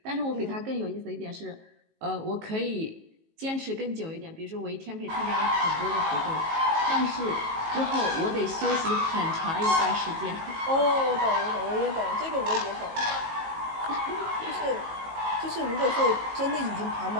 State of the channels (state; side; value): late; left; 19 ms